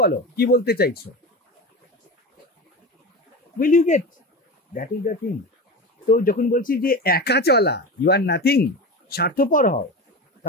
বলো, কি বলতে চাইছো, will you get, that is the thing. তো যখন বলছি যে একা চলা, ইউ আর নাথিং, স্বার্থপর হও,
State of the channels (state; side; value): normal; both; correlation 0.26